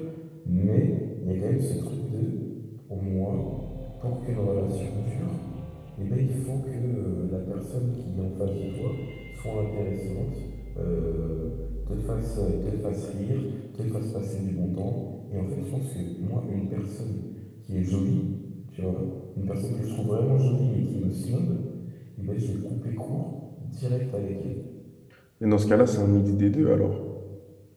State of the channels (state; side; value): identical; both; correlation 1.00